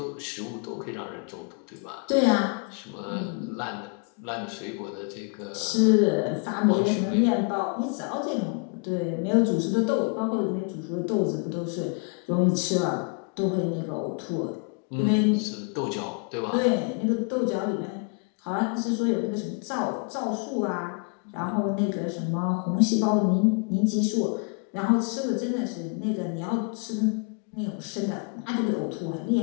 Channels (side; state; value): right; quieter; 35.8 dB